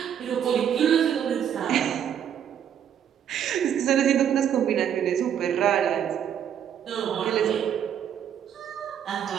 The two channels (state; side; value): quieter; left; 9.1 dB